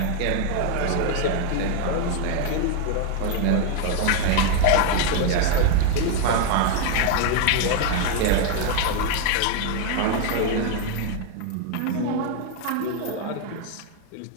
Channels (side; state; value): both; different; correlation 0.01